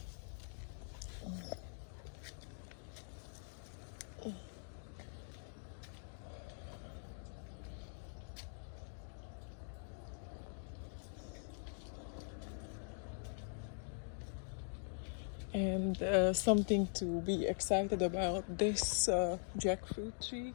And something to be excited about this jackfruit tree.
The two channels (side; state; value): right; silent; digital silence